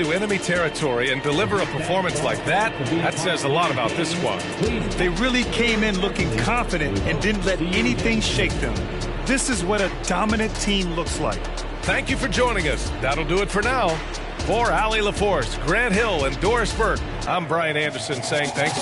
enemy territory and deliver a performance like that says a lot about this squad. They really came in looking confident and didn't let anything shake them. This is what a dominant team looks like. Thank you for joining us. That'll do it for now. For Allie LaForce, Grant Hill, and Doris Burke, I'm Brian Anderson saying thanks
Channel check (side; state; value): both; identical; correlation 1.00